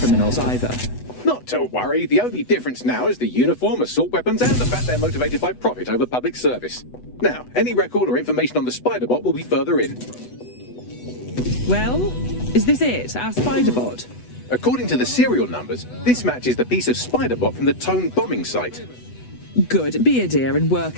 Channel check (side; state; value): right; late; 8.1 ms